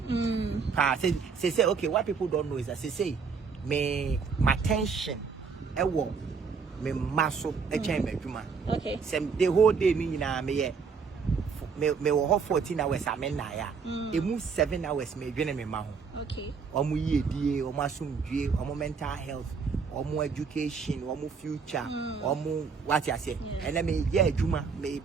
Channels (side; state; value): left; quieter; 5.5 dB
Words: Say okay, what people don't know is that say my tension me muscle okay. The whole day me me WOHO 14 hours amenaya. It moves 7 hours me dwene me ma ho. Okay. Omo yedie, omo asumdue, omo mental health, omo education, omo future, omo what you say. And then me ye adwuma